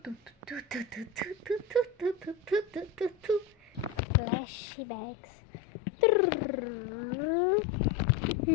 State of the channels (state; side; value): drops out; right; at 4.0 s